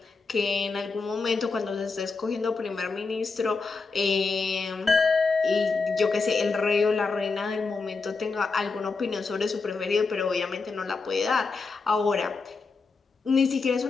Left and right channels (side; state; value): right; quieter; 4.3 dB